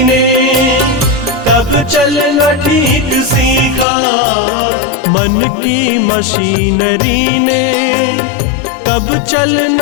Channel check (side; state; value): right; drops out; at 3.9 s